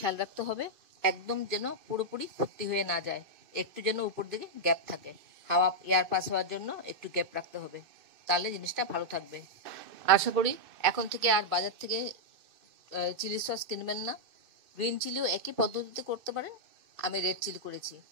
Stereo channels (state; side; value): late; left; 2.6 ms